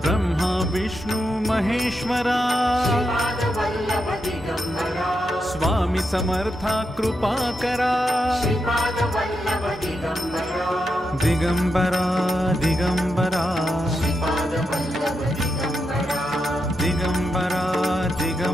ब्रह्मा विष्णु महेश्वरा श्रीपादवल्लभ दिगंबरा स्वामी समर्था कृपा करा श्रीपादवल्लभ दिगंबरा दिगंबरा दिगंबरा श्रीपादवल्लभ दिगंबरा दिगंबरा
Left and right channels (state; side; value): normal; both; correlation 0.85